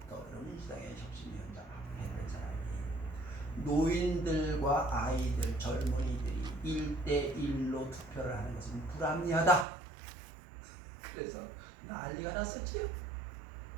더불어민주당의 혁신위원장 했던 사람이 노인들과 아이들, 젊은이들이 1대1로 투표를 하는 것은 불합리하다. 그래서 난리가 났었지요.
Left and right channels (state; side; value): drops out; left; at 9.7 s